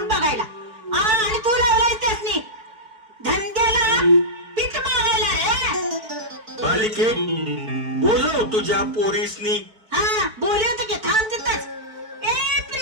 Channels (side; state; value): left; late; 4.6 ms